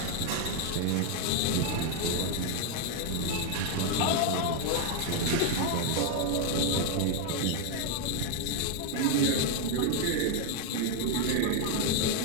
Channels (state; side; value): different; both; correlation 0.01